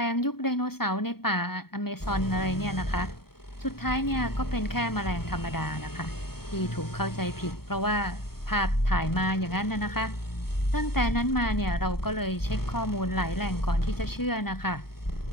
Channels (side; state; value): right; late; 0.95 ms